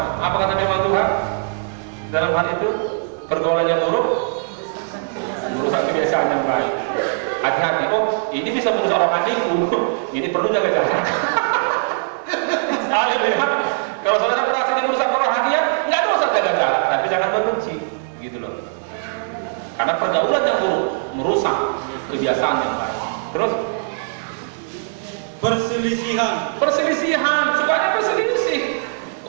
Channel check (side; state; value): left; silent; digital silence